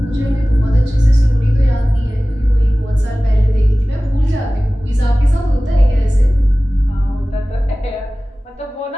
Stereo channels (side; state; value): both; normal; correlation 0.97